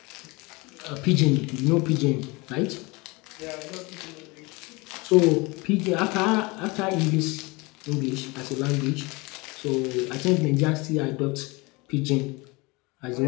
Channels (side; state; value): right; quieter; 25.5 dB